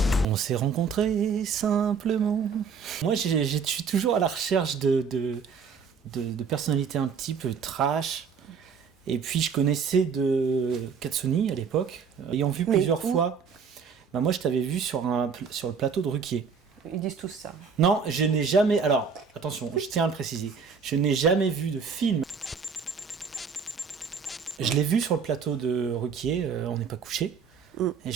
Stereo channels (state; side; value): quieter; left; 5.9 dB